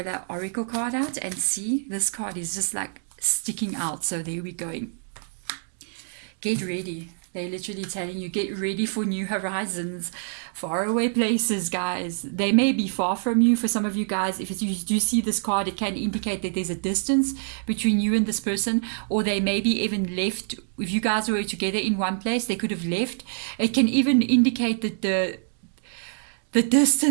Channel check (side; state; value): left; silent; digital silence